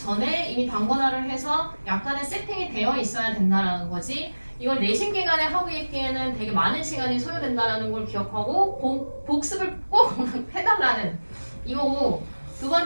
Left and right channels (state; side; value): inverted; both; correlation -1.00